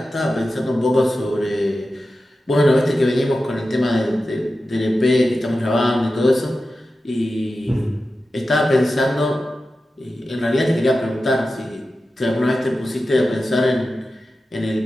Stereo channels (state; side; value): normal; both; correlation 0.93